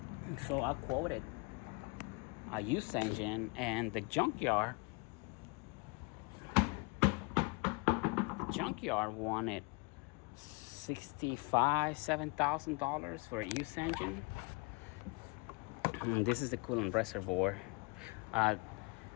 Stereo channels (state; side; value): quieter; right; 30.3 dB